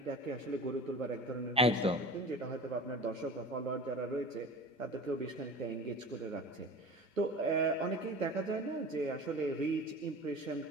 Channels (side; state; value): both; normal; correlation 0.35